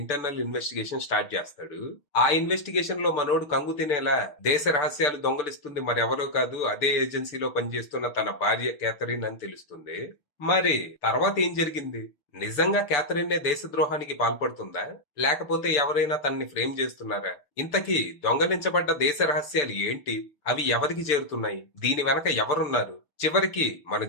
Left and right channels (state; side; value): late; right; 6.8 ms